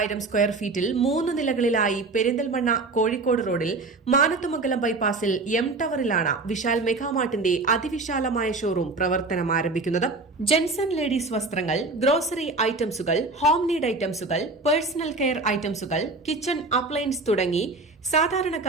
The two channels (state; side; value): quieter; left; 3.5 dB